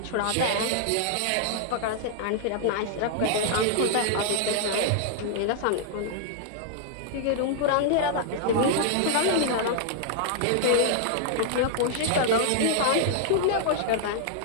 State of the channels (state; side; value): different; both; correlation -0.01